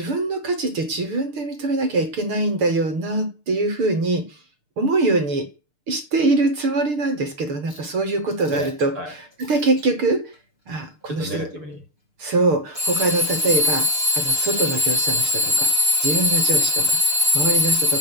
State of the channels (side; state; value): left; late; 6.7 ms